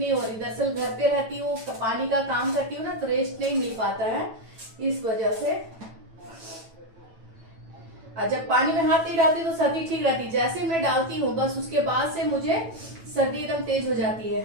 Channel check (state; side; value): late; left; 9.1 ms